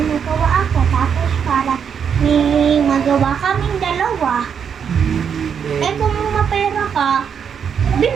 magawa ako. Tapos para may magawa kaming dalawa. Kung mapera ka,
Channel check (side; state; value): left; quieter; 7.3 dB